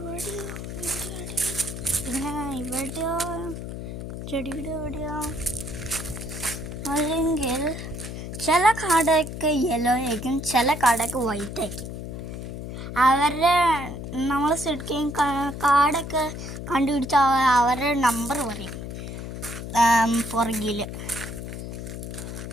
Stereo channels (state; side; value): noise; left; hum, 8 dB below the sound